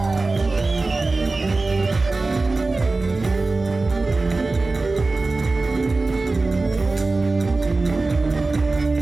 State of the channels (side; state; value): left; quieter; 3.4 dB